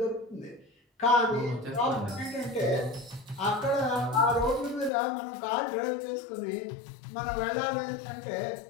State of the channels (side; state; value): right; drops out; at 4.9 s